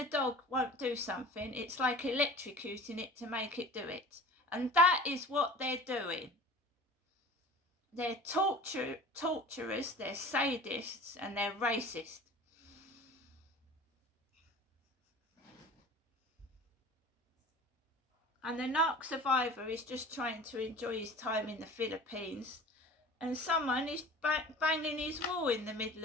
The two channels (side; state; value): both; normal; correlation 0.40